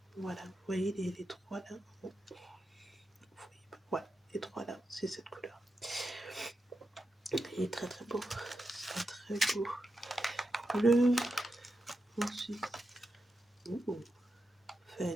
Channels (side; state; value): both; normal; correlation 0.88